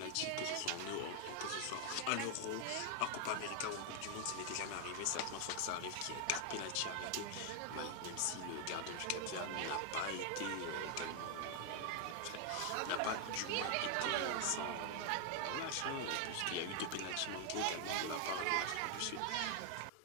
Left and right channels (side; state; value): both; different; correlation 0.00